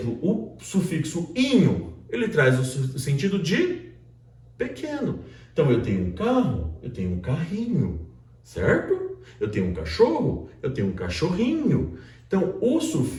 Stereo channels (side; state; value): both; identical; correlation 1.00